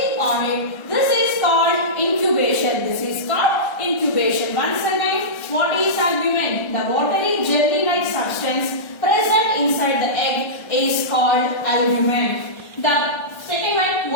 on it, this is called incubation. This is called incubation. Once again, what is albumin? The watery jelly-like substance present inside the egg called albumen. The second one,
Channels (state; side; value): late; right; 1.3 ms